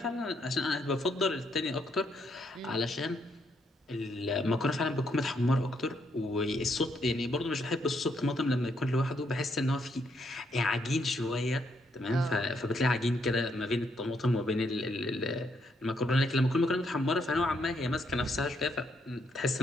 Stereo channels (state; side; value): normal; both; correlation 0.75